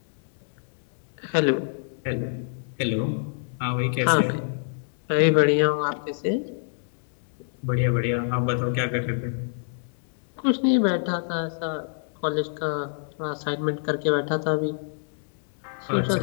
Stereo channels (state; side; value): silent; right; digital silence